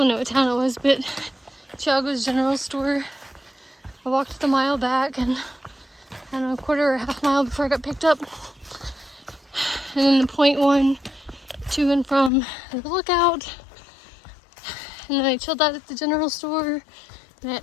know what town it was, but Chiago's general store. I walked the mile back and I don't know, a quarter or a half mile before I got picked up. And then the 0.1 to and from the lookout. And then I chilled out at the general store. And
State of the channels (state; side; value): drops out; right; at 12.3 s